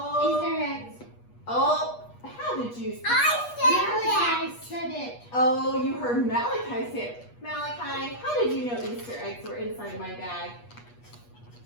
Easter eggs. Oh, how did you? I said it. Oh, you heard Malachi say it. Malachi, how did you know Easter eggs were inside my bag?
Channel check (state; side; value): late; right; 8.3 ms